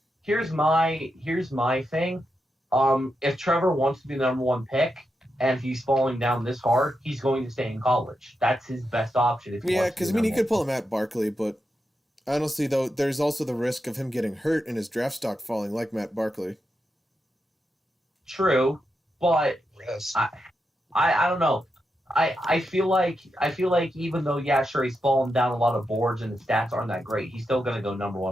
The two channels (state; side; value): normal; both; correlation 0.86